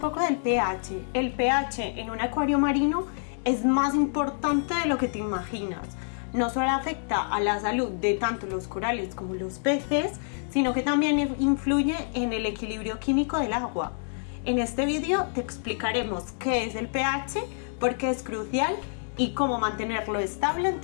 del pH. El pH en un acuario marino es más importante de lo que te imaginas. No solo afecta a la salud de tanto los corales como los peces, sino que también influye en el equilibrio químico del agua. En este vídeo te explicaremos qué es el pH, por qué es crucial y cómo mantenerlo estable en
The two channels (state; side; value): silent; right; digital silence